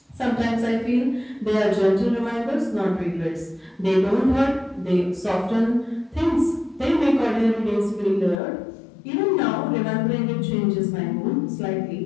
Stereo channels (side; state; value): right; drops out; at 8.3 s